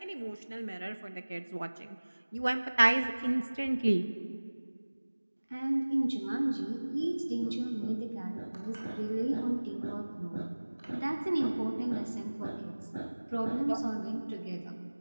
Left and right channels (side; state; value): both; inverted; correlation -1.00